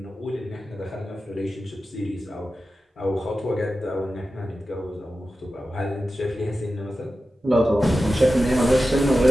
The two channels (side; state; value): both; normal; correlation 0.93